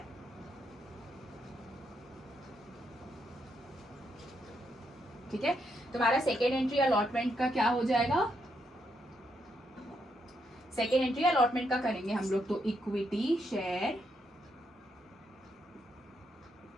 ठीक है, तुम्हारा सेकेंड एंट्री अलॉटमेंट का क्या हो जाएगा, सेकेंड एंट्री अलॉटमेंट का करेंगे हम लोग, तो equity share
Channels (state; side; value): normal; both; correlation 0.79